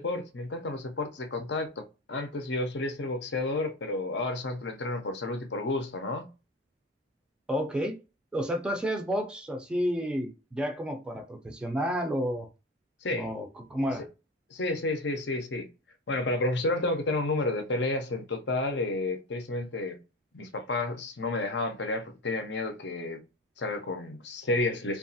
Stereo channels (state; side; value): normal; both; correlation 0.30